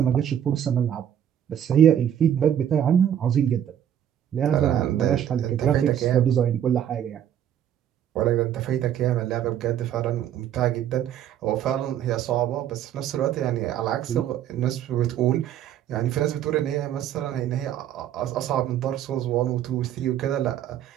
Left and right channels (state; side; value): quieter; left; 10.2 dB